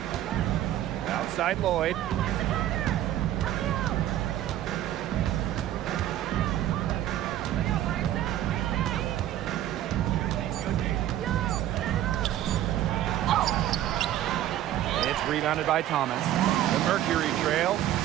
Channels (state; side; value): quieter; left; 12.6 dB